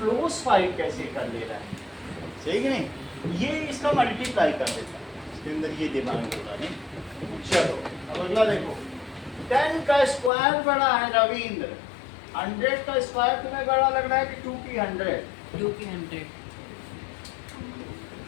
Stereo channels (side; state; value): right; drops out; at 10.3 s